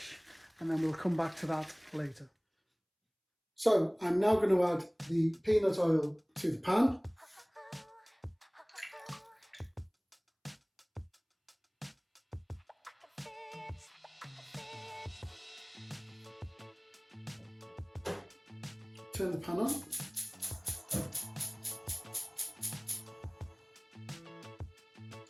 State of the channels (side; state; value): both; identical; correlation 1.00